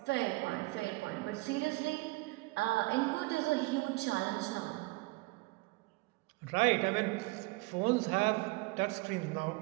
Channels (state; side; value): quieter; left; 23.8 dB